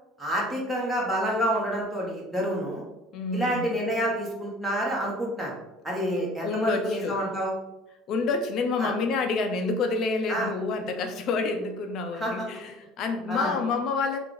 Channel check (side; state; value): both; normal; correlation 0.48